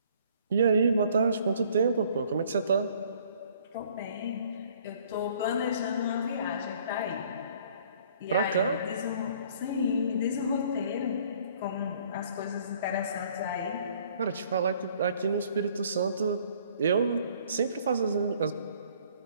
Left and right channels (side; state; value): both; inverted; correlation -0.58